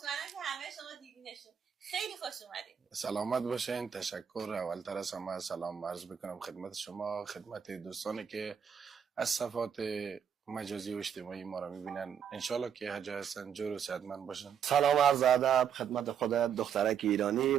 که همه شما دیدینشون. خیلی خوش اومدین. سلامت باشین. تشکر. اولتر از همه سلام عرض بکنم خدمت شما، خدمت دوستانی که از صفحات مجازی و اجتماعی ما را میبینن. انشالله که هر جا هستن جور و صحتمند باشن. سلام عرض ادب خدمت خودت دخترک ایرانی،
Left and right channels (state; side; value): quieter; left; 8.1 dB